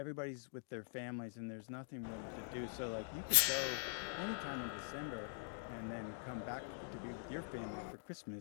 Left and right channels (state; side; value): silent; right; digital silence